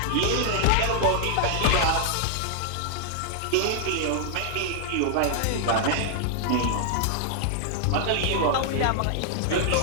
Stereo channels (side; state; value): both; different; correlation -0.01